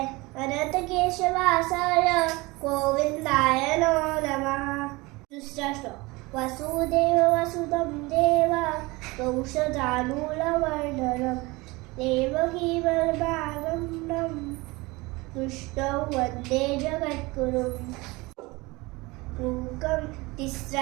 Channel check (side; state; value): left; quieter; 23.3 dB